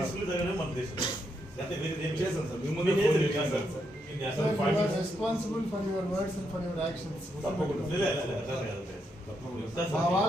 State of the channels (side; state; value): both; normal; correlation 0.80